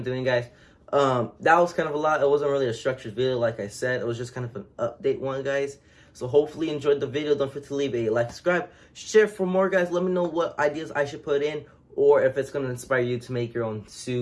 doing, guys. That was kind of a lot. It wasn't really a structured video, like I said. It was just kind of an update one, guys. So hopefully you enjoyed the video. Don't forget to leave a like, subscribe, share for more, guys. Let me know what ideas I should put in, or if it's going to inspire you to make your own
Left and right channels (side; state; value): both; identical; correlation 1.00